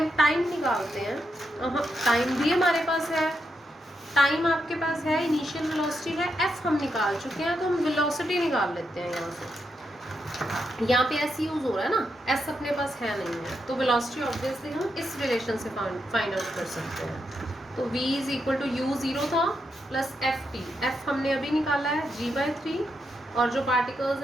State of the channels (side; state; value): both; normal; correlation 0.83